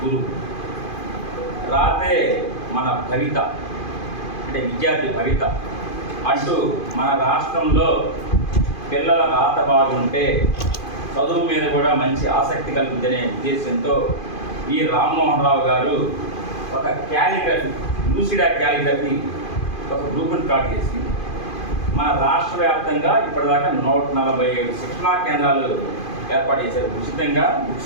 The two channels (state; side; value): late; right; 2.5 ms